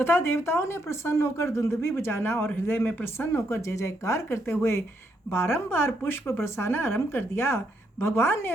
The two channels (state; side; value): normal; both; correlation 0.77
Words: देवताओं ने प्रसन्न होकर दुंदुभी बजाना और हृदय में प्रसन्न होकर जय जयकार करते हुए बारंबार पुष्प बरसाना आरंभ कर दिया। भगवान